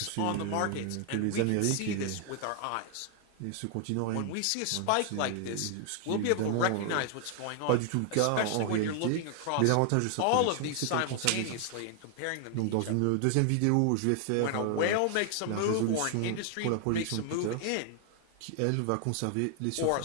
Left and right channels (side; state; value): both; different; correlation 0.00